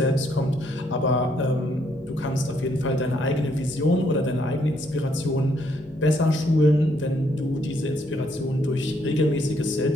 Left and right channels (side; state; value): both; normal; correlation 0.71